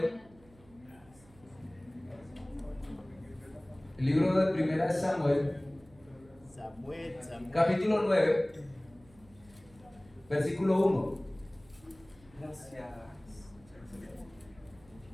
El libro de 1 Samuel. Capítulo 9, versículo 1. Gracias.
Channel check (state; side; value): noise; right; hum, 26 dB below the sound